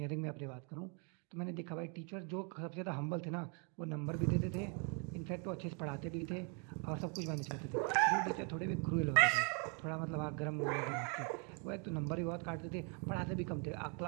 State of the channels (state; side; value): quieter; left; 36.7 dB